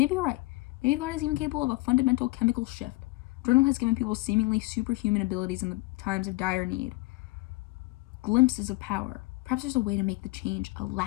you're right. Maybe the body is even capable of a fundamental chemical shift. Journal has given people seemingly superhuman abilities in the times of dire need. Glimpses of power. Perhaps there's a way to make the change a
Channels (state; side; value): quieter; right; 22.4 dB